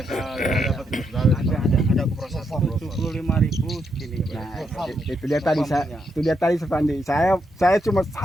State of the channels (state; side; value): normal; both; correlation 0.79